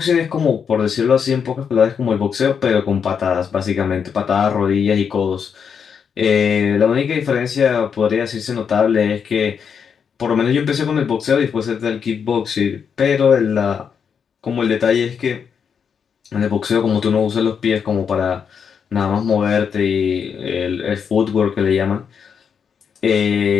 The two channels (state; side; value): quieter; right; 6.9 dB